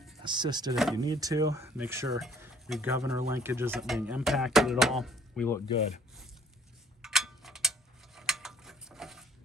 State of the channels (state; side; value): normal; both; correlation 0.57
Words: Assist it if you need to. Make sure your governor linkage isn't being impacted at all. We look good.